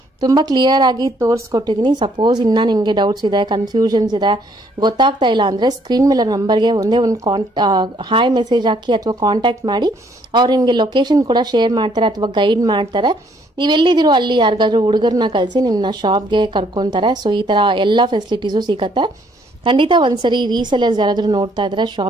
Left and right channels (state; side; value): normal; both; correlation 0.66